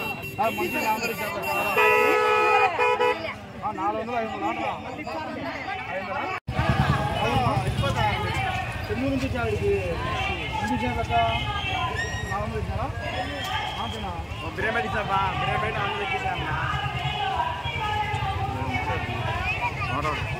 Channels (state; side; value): identical; both; correlation 1.00